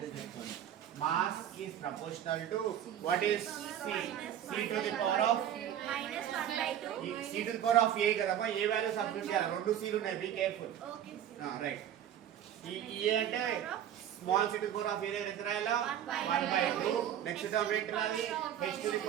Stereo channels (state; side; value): quieter; left; 10.4 dB